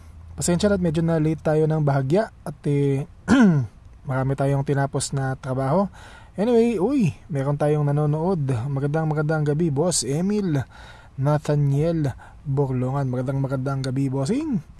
pasensya na at medyo na late tayo ng bahagya at marami tayong tinapos na trabaho. Anyway, meron tayong nanonood. Magandang gabi, Boss Emil Nathaniel Borlongan. Magandang gabi, Bossing.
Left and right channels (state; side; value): identical; both; correlation 1.00